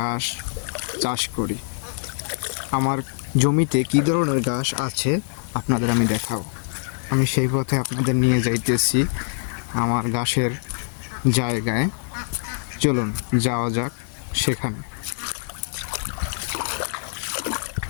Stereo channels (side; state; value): right; silent; digital silence